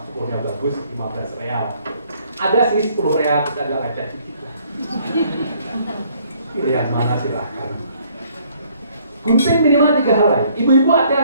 cukurnya bagus, 15 real. Ada sih 10 real, kita agak lecet dikit lah. Pilihan mana silahkan. Gunting minimal 3 helai. Ibu-ibu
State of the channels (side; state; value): both; inverted; correlation -0.63